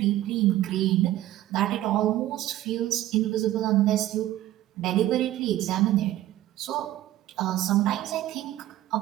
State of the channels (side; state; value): left; quieter; 14.3 dB